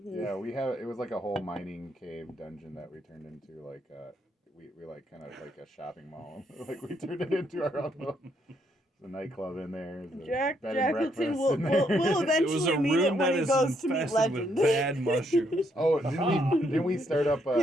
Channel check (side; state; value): both; normal; correlation 0.74